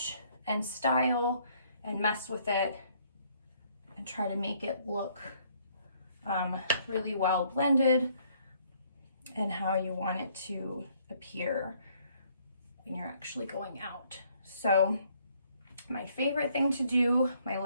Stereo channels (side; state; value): both; inverted; correlation -0.65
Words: and style and mess with it and try to make it look really well blended and how you want it to appear when you're actually going out. So my favorite thing to do, my